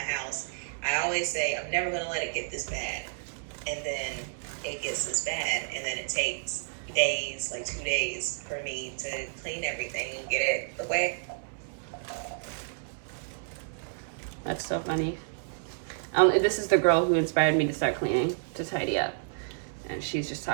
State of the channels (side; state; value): left; silent; digital silence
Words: I always say I'm never gonna let it get this bad, and then it gets this bad, and then it takes days, like 2 days, for me to clean everything and get it away. That's so funny. This is the girl who inspired me to start cleaning, to tidy up. And she's just